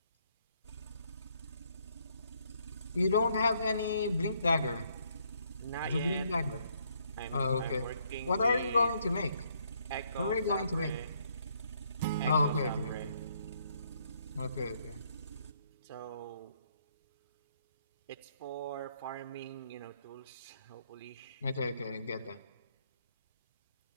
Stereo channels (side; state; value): both; inverted; correlation -0.71